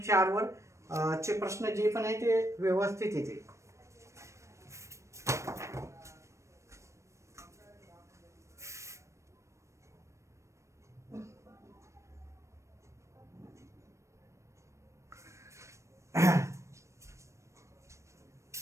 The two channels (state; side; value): late; left; 0.14 ms